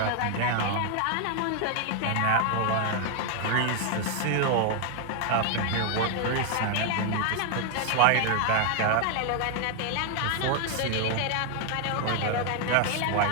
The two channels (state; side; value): different; both; correlation 0.00